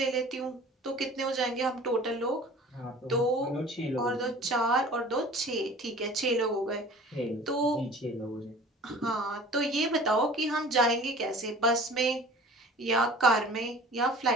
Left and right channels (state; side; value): normal; both; correlation 0.44